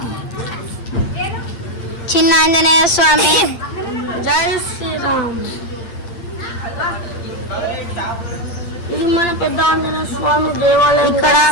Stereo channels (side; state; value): right; late; 8.7 ms